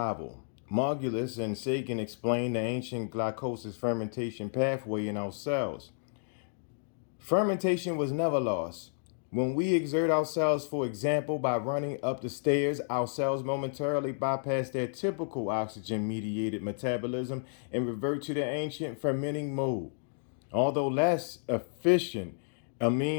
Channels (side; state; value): right; silent; digital silence